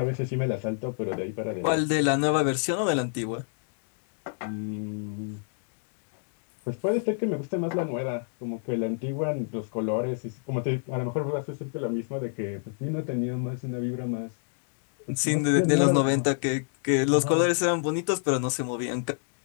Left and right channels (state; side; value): silent; right; digital silence